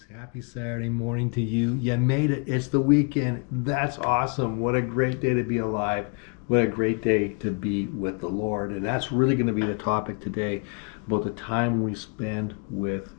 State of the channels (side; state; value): right; quieter; 35.7 dB